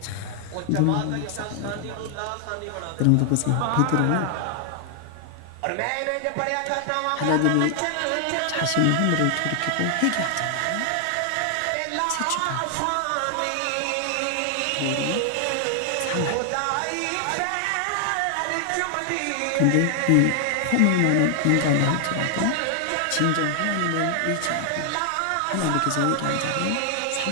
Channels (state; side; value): different; both; correlation 0.00